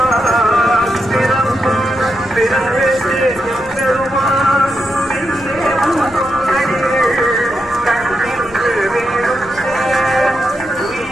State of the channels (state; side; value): noise; left; rumble, 21 dB below the sound